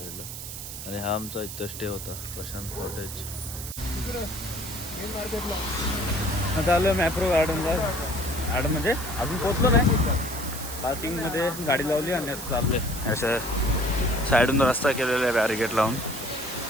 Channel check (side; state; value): right; noise; hiss, 9 dB below the sound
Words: आणि हा आमचा इथं स्टे होता प्रशांत कॉटेज. आता आलं मॅप्रो गार्डनला. गार्डन म्हणजे अजून पोचलो नाही. पार्किंगमध्ये गाडी लावली आणि आता चालले. असं साईडून रस्ता केलेला आहे बॅरिकेड लावून